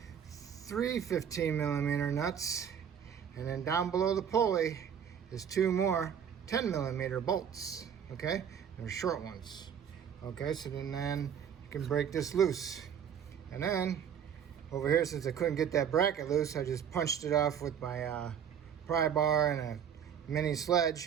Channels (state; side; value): quieter; left; 8.2 dB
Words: 3 15mm nuts, And then down below the pulley is 2 more 10mm bolts, okay? They're short ones. Okay, so then you can break this loose. And then over here, since I couldn't get that bracket loose, I just punched it off with my pry bar and a mini